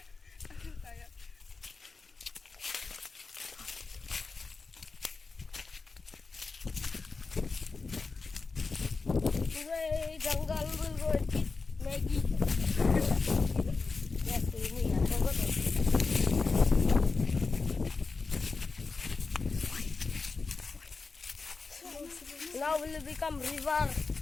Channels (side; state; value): right; quieter; 4.3 dB